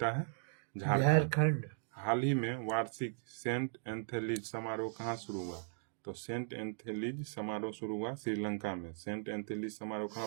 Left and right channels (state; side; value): silent; left; digital silence